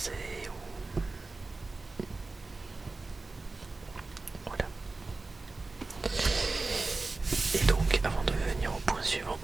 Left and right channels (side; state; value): left; quieter; 3.6 dB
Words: ou voilà. Et donc, avant de venir au point suivant,